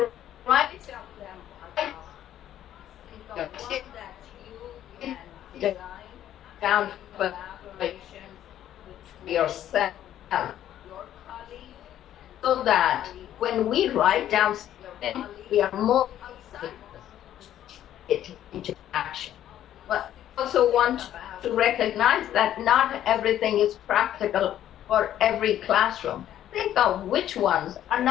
write down for yourself, so that when we write down something, we are more it into action. But I also want to recognize that not everything is practical for every classroom. Think of which ones are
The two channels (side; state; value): right; quieter; 11.6 dB